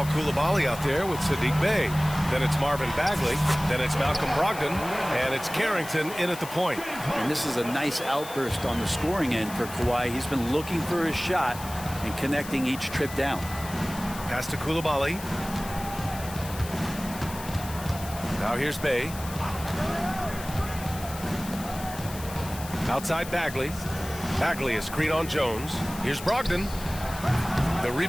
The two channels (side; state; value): left; noise; hiss, 13 dB below the sound